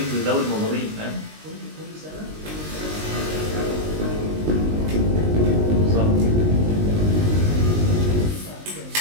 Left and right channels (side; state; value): left; late; 19 ms